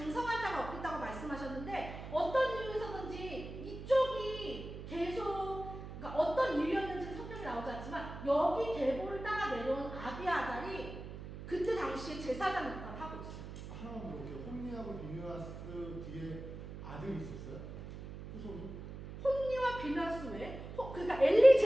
자가 없겠다고 말씀하셨는데 어떤 이유에서든지 이쪽이 계속 그러니까 어떤 이유였는지는 성경에 나오지 않지만 여기 계보를 따라 내려온 아비아달이 그때 당시에 제사장 역할을 하고 있어요. 하나만 물어볼게요. 홈리하고 비누아스 뒤에 아들이 있었어요? 후손이? 홈리와 비누아스 왜? 그러니까 엘리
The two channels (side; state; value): right; noise; hum, 10 dB below the sound